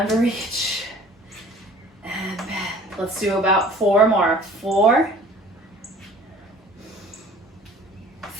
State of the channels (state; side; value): normal; both; correlation 0.49